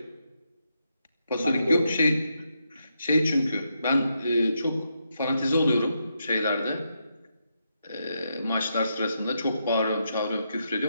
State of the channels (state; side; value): inverted; both; correlation -0.82